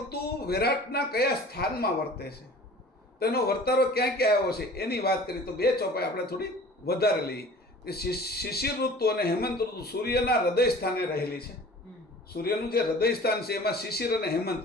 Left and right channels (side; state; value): both; normal; correlation 0.45